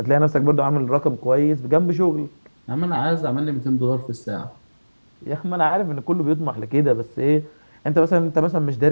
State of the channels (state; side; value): inverted; both; correlation -1.00